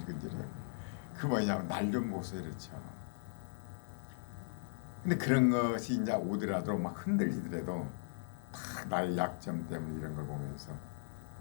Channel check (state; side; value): silent; right; digital silence